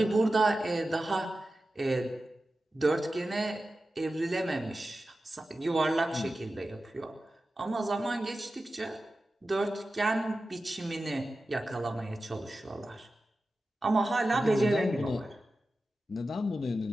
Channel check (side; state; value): both; normal; correlation 0.93